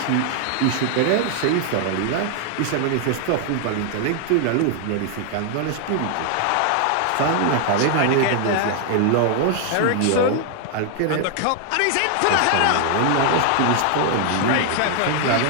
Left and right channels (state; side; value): different; both; correlation 0.00